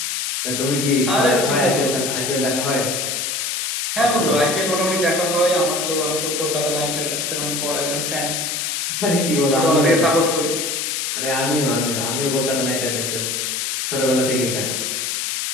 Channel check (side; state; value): left; noise; hiss, 1 dB below the sound